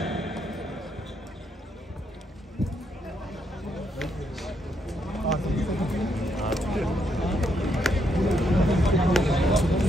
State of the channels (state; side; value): normal; both; correlation 0.77